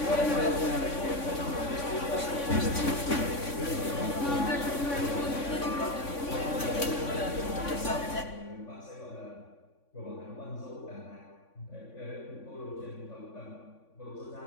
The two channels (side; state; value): right; late; 3.5 ms